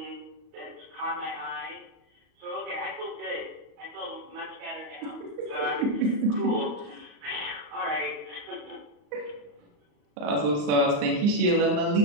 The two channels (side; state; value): left; late; 35 ms